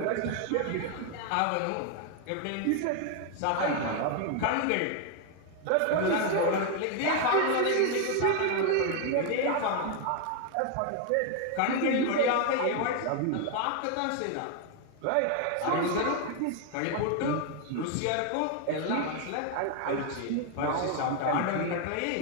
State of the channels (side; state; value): both; different; correlation 0.00